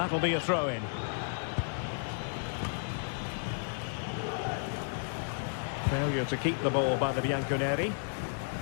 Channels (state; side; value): silent; right; digital silence